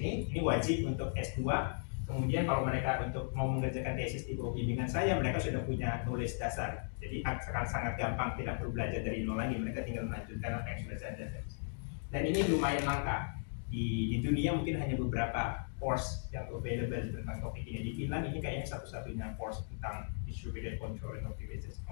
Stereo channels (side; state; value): right; silent; digital silence